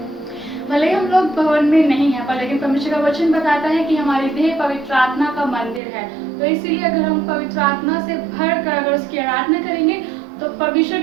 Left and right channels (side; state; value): left; drops out; at 5.8 s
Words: भले ही हम लोग भवन में नहीं हैं, पर लेकिन परमेश्वर का वचन बताता है कि हमारी देह पवित्र आत्मा का मंदिर है। तो इसीलिए अगर हम पवित्र आत्मा से भर कर अगर उसकी आराधना करेंगे तो परमेश्वर